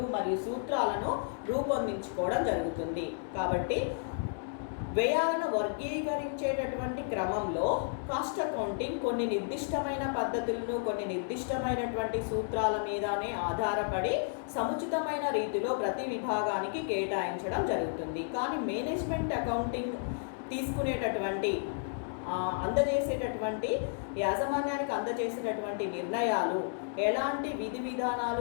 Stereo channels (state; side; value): silent; right; digital silence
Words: మరియు సూత్రాలను రూపొందించుకోవడం జరుగుతుంది. కాబట్టి వ్యయాలను వర్గీకరించేటటువంటి క్రమంలో కాస్ట్ అకౌంటింగ్ కొన్ని నిర్దిష్టమైన పద్ధతులను కొన్ని నిర్దిష్టమైనటువంటి సూత్రాల మీదనే ఆధారపడి సముచితమైన రీతిలో ప్రతి విభాగానికి కేటాయించడం జరుగుతుంది. కానీ మేనేజ్మెంట్ అకౌంటింగ్ తీసుకునేటటువంటి అందజేసేటటువంటి యాజమాన్యానికి అందజేసేటటువంటి నిర్ణయాలు ఎలాంటి విధి విధానాలు